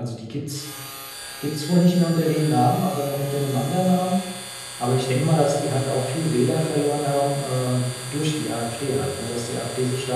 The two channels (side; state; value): both; identical; correlation 1.00